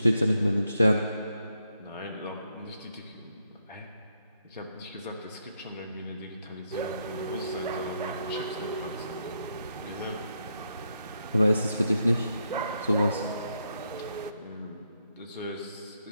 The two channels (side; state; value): both; inverted; correlation -0.79